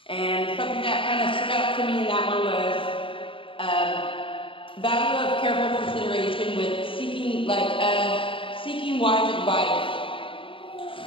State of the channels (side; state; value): right; late; 0.25 ms